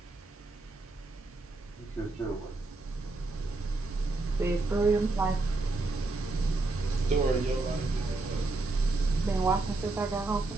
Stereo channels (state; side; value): quieter; left; 3.3 dB